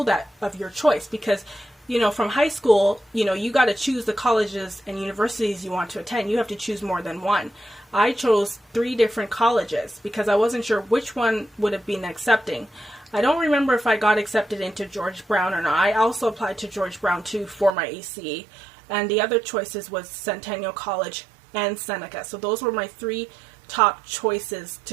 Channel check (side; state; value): left; drops out; at 17.7 s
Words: that of your choice, because, you know, from high school, you know, you got to choose the colleges and universities you want to attend. You have to choose more than one. I chose 3 different colleges because I wasn't sure which one would have been accepting. I don't remember if I got accepted into George Brown or not. I also applied to George Brown too for my ACE, and the other choices was Centennial College and Seneca. So those were my 3 top choices